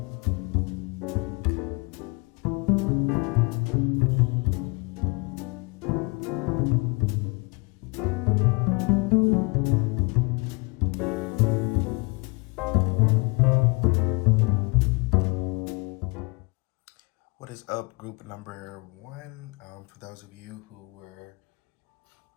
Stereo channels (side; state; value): right; quieter; 29.5 dB